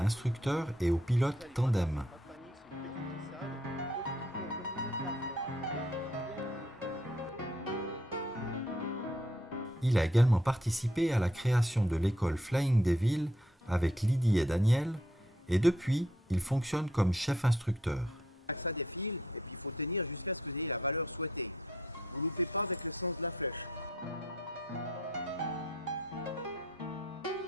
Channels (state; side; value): normal; both; correlation 0.69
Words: et aux pilotes tandem. Il a également participé à la création de l'école Flying Devil avec Lydie et Daniel, et depuis, il fonctionne comme chef instructeur. Ça défile et puis il faut tenir jusqu'à ce que vous ayez la valeur souhaitée. Vous ne loupez pas avec le sens de la flèche.